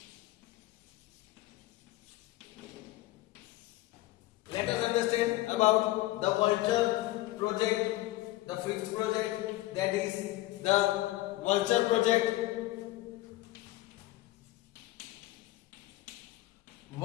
let us understand about the vulture project, the fifth project, that is the vulture project.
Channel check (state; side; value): quieter; right; 17.5 dB